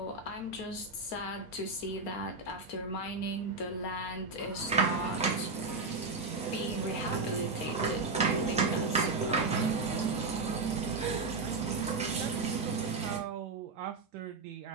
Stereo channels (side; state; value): left; quieter; 3.7 dB